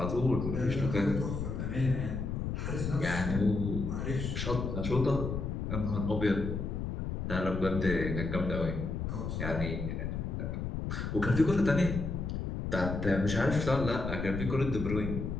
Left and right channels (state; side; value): noise; left; rumble, 3 dB below the sound